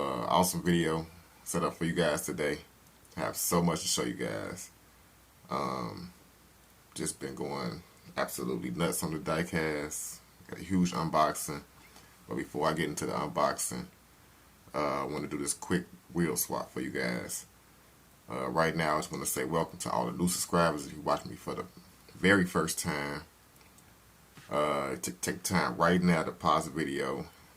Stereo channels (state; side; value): identical; both; correlation 1.00